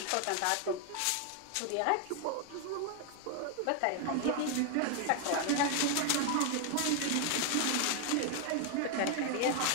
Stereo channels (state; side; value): different; both; correlation 0.00